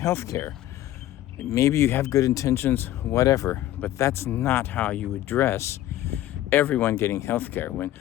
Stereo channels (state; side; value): quieter; right; 13.9 dB